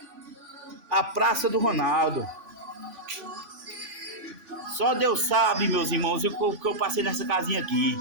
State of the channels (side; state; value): left; late; 3.5 ms